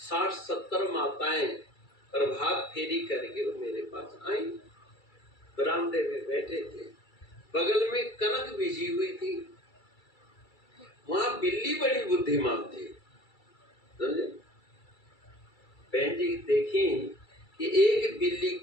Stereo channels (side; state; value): right; late; 2.3 ms